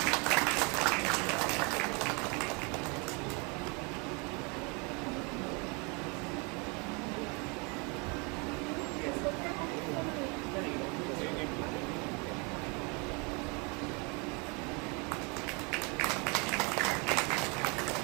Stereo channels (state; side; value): quieter; left; 31.4 dB